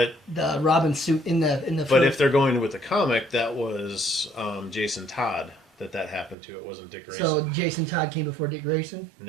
the Robin suit in the. But film. if they're going with the comic, that was Jason Todd that happened to. It wasn't Dick Grayson. So Jason Todd came before Dick Grayson.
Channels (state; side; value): drops out; left; at 6.4 s